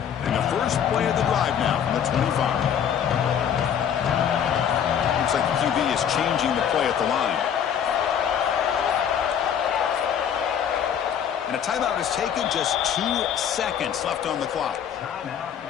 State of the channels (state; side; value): quieter; right; 8.6 dB